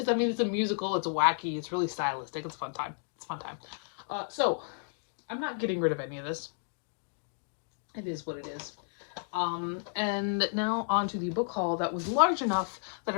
a musical. It's wacky. It's really stylistic. It's a fun time. So I'm not getting rid of any of this. It is what it is. And now on to the book haul that was large enough that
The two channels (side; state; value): right; silent; digital silence